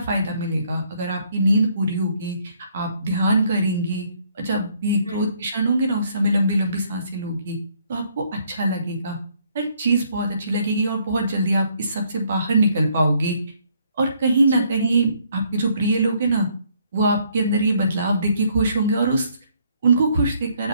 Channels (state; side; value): inverted; both; correlation -0.67